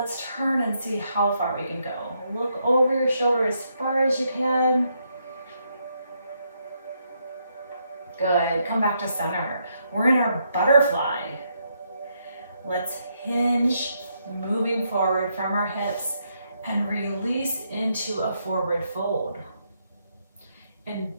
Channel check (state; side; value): inverted; both; correlation -0.77